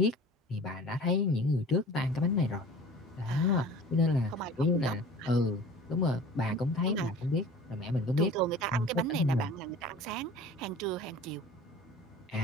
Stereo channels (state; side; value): normal; both; correlation 0.43